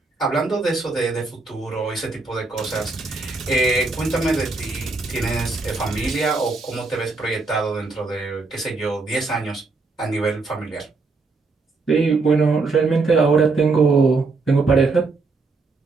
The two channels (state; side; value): quieter; left; 3.9 dB